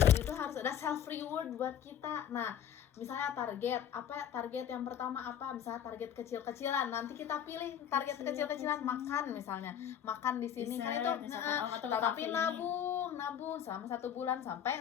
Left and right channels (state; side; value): quieter; right; 9.4 dB